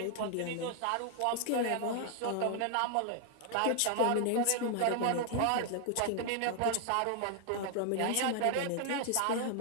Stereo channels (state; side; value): different; both; correlation 0.00